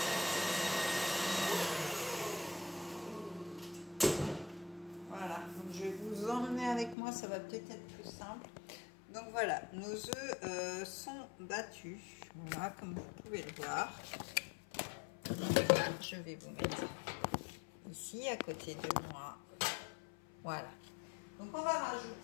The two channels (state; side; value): drops out; right; at 7.0 s